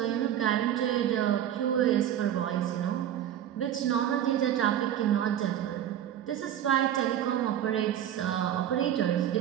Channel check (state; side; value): quieter; left; 10.8 dB